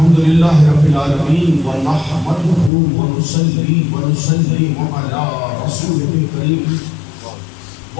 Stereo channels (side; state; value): right; drops out; at 2.7 s